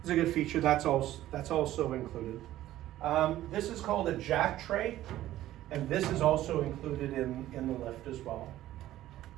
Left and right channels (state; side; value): quieter; left; 14.2 dB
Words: feature. That's also included. This is called a jack tray, and this is also included in the lift as well.